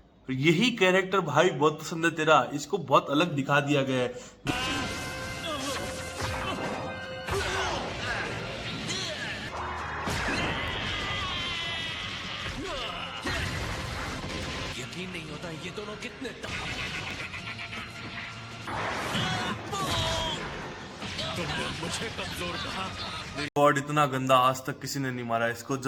यही कैरेक्टर भाई बहुत पसंद है तेरा, इसको बहुत अलग दिखा दिया गया है। यकीन नहीं होता ये दोनों कितने तुमने मुझे कमजोर कहा। गॉड, इतना गंदा आज तक किसी ने नहीं मारा इसको।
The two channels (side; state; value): both; identical; correlation 1.00